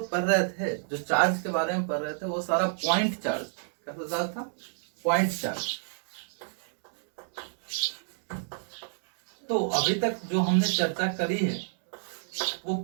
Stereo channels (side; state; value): left; silent; digital silence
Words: पढ़ रहे थे, जो चार्ज के बारे में पढ़ रहे थे, वो सारा पॉइंट चार्ज। कैसा चार्ज था? Point charge. तो अभी तक जो हमने चर्चा करी है वो